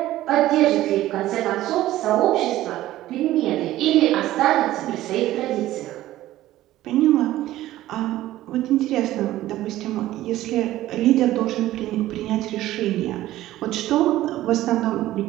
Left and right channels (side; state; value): left; quieter; 15.0 dB